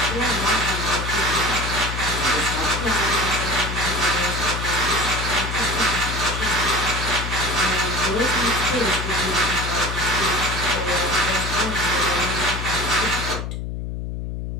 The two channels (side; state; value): left; noise; hum, 5 dB below the sound